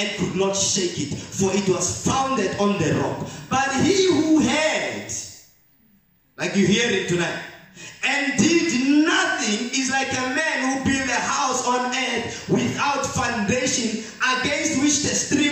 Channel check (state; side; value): identical; both; correlation 1.00